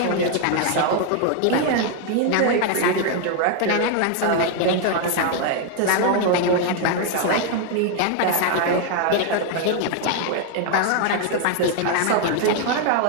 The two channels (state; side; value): different; both; correlation 0.00